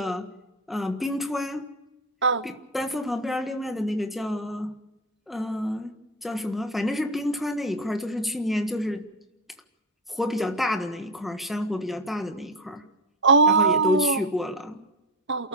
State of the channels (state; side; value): normal; both; correlation 0.18